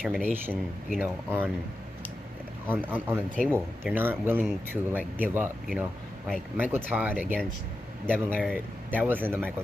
you know, on the table. They're not willing to like give up, you know. Like Michael Todd against Devin Larratt, that wasn't the Michael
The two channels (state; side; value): normal; both; correlation 0.91